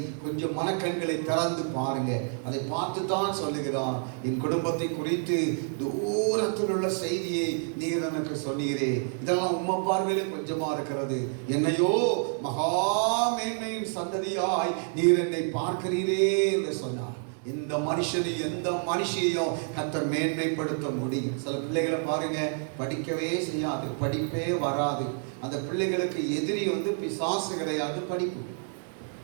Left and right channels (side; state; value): left; silent; 57 dB below the other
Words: கொஞ்சம் மனக்கண்களை திறந்து பாருங்க. அதை பார்த்து தான் சொல்லுகிறான். என் குடும்பத்தை குறித்து தூரத்தில் உள்ள செய்தியை நீர் எனக்கு சொன்னீரே, இதெல்லாம் உம்மை பார்வையிலே கொஞ்சமா இருக்கிறது. என்னையோ மகா மேன்மையின் சந்ததியாய் நீர் என்னை பார்க்கிறீரே என்று சொன்னார். இந்த மனுஷனை எந்த மனுஷையும் கர்த்தர் மேன்மைப்படுத்த முடியும். சில பிள்ளைகளை பாருங்க, படிக்கவே செய்யாது, படிப்பே வராது. அந்த பிள்ளைகளுக்கு எதிரி பிசாசு கிடையாது, படிப்பு.